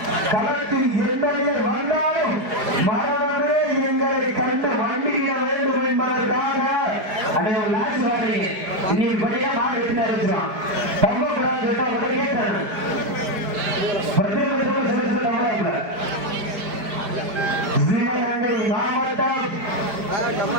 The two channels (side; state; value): left; late; 4.9 ms